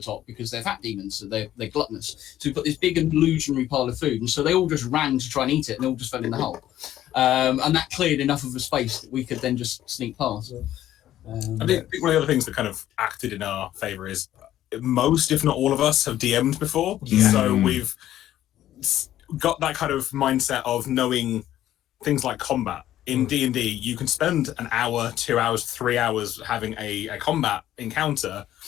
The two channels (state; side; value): quieter; right; 12.8 dB